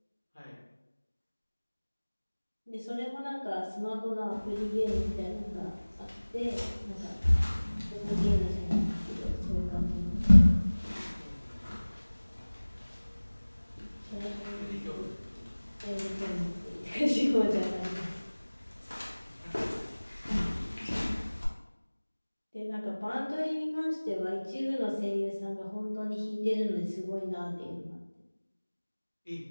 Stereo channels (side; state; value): both; inverted; correlation -1.00